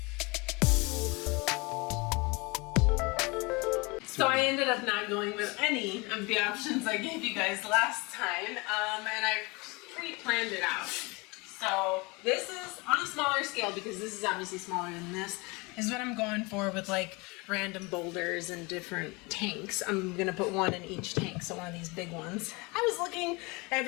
So I ended up not going with any of the options I gave you guys last time, and I pre-planned it out. So this is on a smaller scale, because this is obviously smaller than this, is what I'm going for with like random boulders and different tanks. I'm gonna put one in each tank, so one of these big ones. I was looking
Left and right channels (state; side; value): quieter; right; 26.6 dB